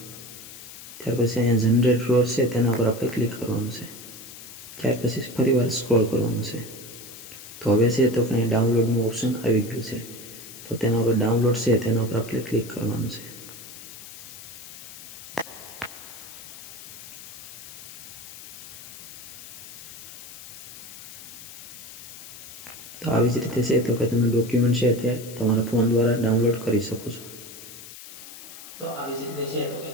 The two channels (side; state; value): left; noise; hiss, 14 dB below the sound